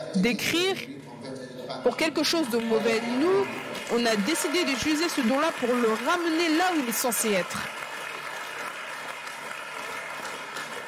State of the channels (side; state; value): both; identical; correlation 1.00